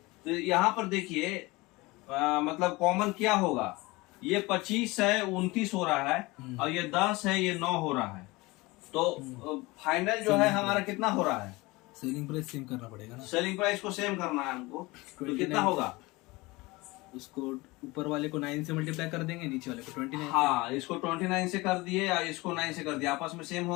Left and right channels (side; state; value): right; quieter; 22.5 dB